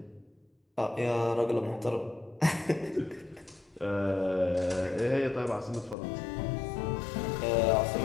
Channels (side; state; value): right; drops out; at 6.0 s